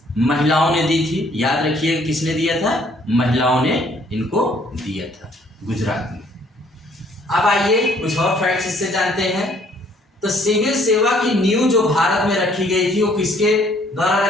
महिलाओं ने दी थी। याद रखिए किसने दिया था? महिलाओं ने इनको दिया था गुजरात में। अब आइए कुछ और फैक्ट्स इससे जानते हैं। तो सिविल सेवा की नींव जो भारत में रखी गई थी वो किसके द्वारा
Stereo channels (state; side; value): normal; both; correlation 0.62